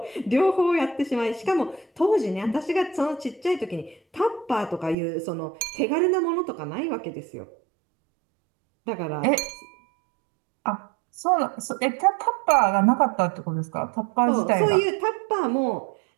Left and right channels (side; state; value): left; drops out; at 5.0 s